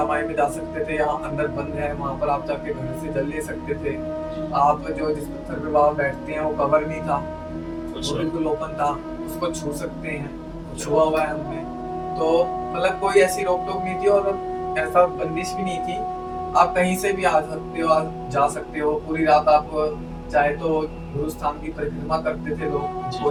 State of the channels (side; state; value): both; identical; correlation 1.00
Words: माई में जा सकते थे, यहाँ अंदर बंद है, वहां पर आप जाके घर से जल ले सकते थे। आप जो जिस पत्थर पे बाबा बैठते हैं वो कवर नहीं था, वो अच्छा। बिल्कुल ओपन था, उसको छू सकते हैं, छुआ हुआ है हमने। तो मतलब कोई ऐसी रोक टोक नहीं थी और ऐसा बंदिश भी नहीं थी, आप कहीं से भी आ सकते हो, जा सकते हो। पूरी रात आप चाहे तो गुरु स्थान की परिक्रमा करते थे लोग,